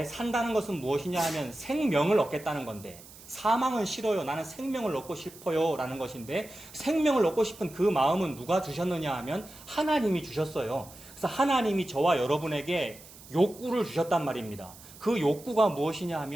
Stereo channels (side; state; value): right; noise; hiss, 19 dB below the sound